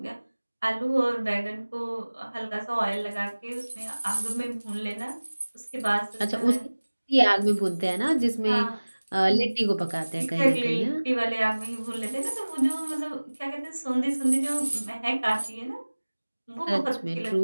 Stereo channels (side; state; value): both; inverted; correlation -1.00